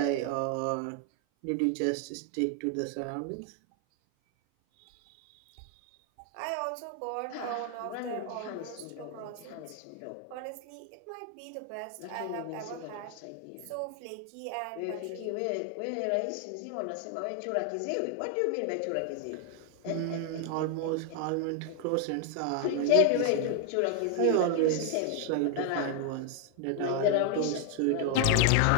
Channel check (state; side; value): different; both; correlation 0.00